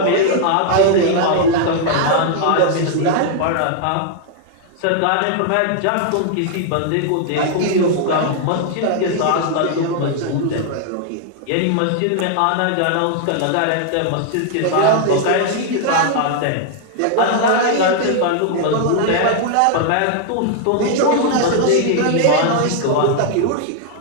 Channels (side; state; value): both; different; correlation 0.00